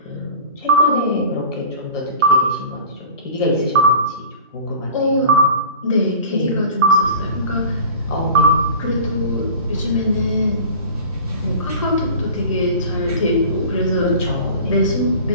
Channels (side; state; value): both; inverted; correlation -0.41